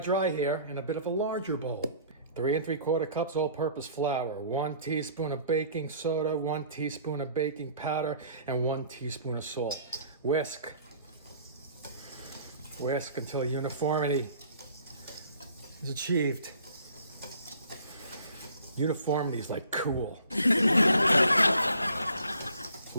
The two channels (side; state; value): both; inverted; correlation -0.54